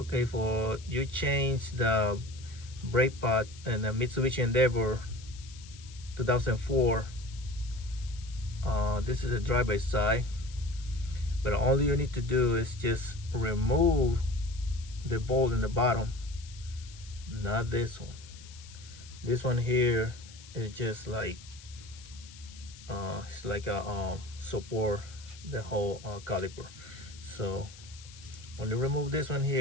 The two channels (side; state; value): left; noise; hiss, 19 dB below the sound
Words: for you change the brake pad in the Mitsubishi Endeavor 2004. This is a drive-by side, but all you need to do is just remove the bolt in the bottom, not this one. This one here is just like it's like a support the whole caliper. So only remove this one